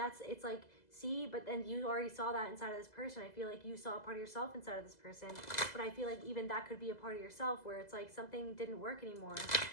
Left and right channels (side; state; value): right; late; 2.0 ms